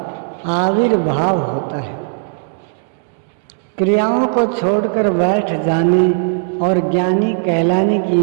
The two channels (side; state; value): left; silent; 63 dB below the other